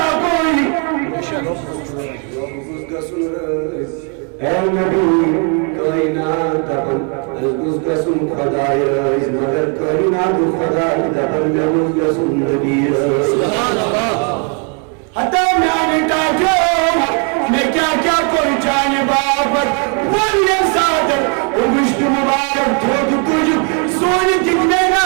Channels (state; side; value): quieter; left; 38.2 dB